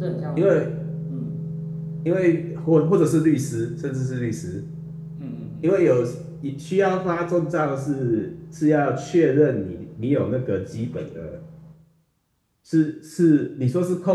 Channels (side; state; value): both; identical; correlation 1.00